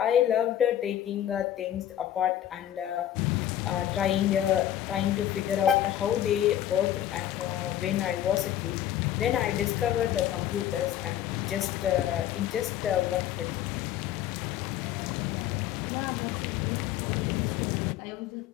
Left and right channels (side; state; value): right; quieter; 11.6 dB